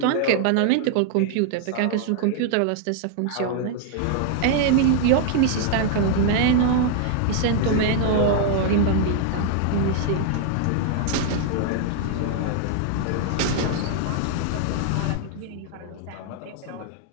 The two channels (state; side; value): different; both; correlation 0.00